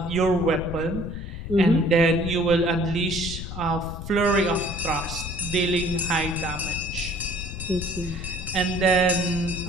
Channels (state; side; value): noise; left; rumble, 8 dB below the sound